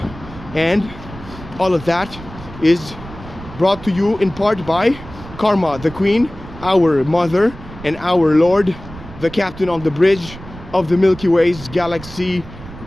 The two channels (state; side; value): noise; right; rumble, 15 dB below the sound